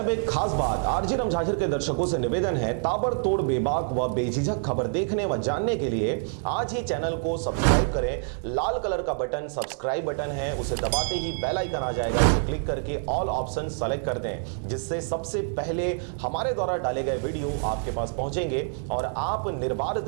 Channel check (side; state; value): left; silent; 60 dB below the other